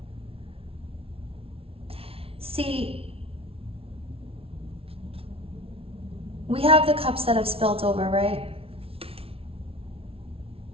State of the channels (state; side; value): late; left; 0.27 ms